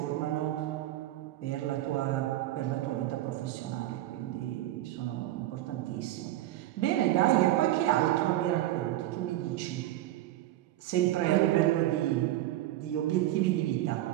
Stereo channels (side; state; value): left; quieter; 14.8 dB